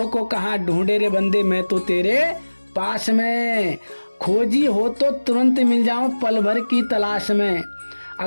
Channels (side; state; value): both; inverted; correlation -1.00